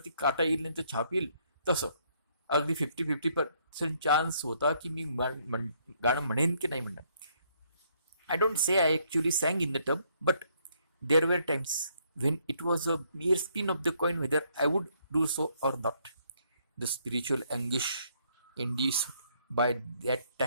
काटा येईल नाही तर छाप येईल, तसं अगदी 50-50% चान्स होता की मी गाणं म्हणेन की नाही म्हणणार. I don't say I actually sang in the tub, but there were times when it was a mere spin of the coin whether I would do so or not. The spiritual anguish induced by that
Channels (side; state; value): both; inverted; correlation -0.70